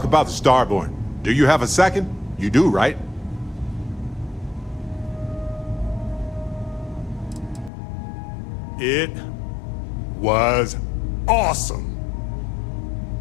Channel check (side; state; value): right; drops out; at 7.7 s